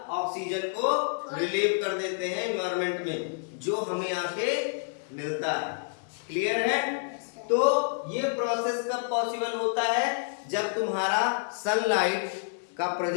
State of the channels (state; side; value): silent; right; digital silence